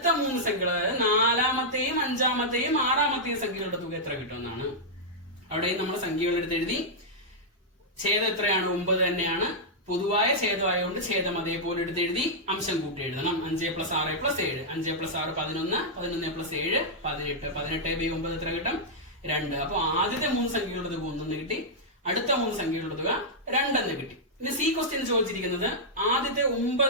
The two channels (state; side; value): normal; both; correlation -0.08